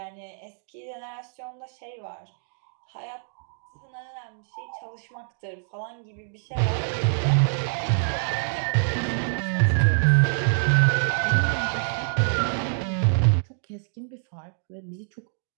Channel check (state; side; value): silent; left; digital silence